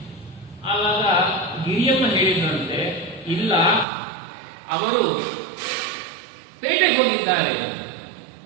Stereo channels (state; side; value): drops out; left; at 3.9 s